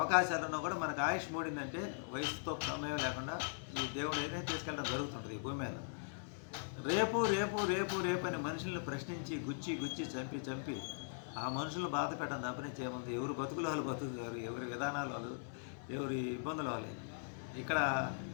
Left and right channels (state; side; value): silent; right; digital silence